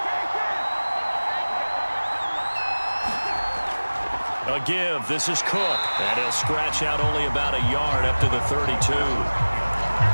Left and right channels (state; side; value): inverted; both; correlation -1.00